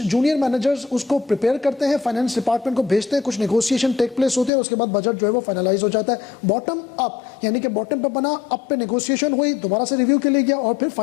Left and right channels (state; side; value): drops out; right; at 4.5 s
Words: जूनियर मैनेजर्स उसको प्रिपेयर करते हैं, फाइनेंस डिपार्टमेंट को भेजते हैं, कुछ नेगोशिएशन टेक प्लेस होते हैं, उसके बाद बजट जो है वो फाइनलाइज हो जाता है। बॉटम अप यानी कि बॉटम पे बना, अप पे नेगोशिएशन हुई, दोबारा से रिव्यू के लिए गया और फिर